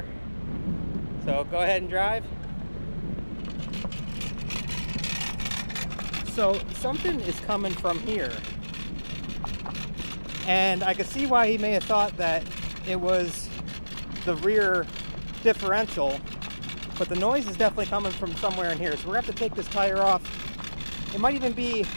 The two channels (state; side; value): inverted; both; correlation -1.00